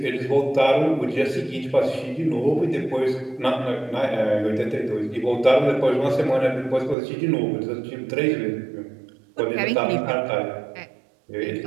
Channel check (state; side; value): drops out; left; at 7.0 s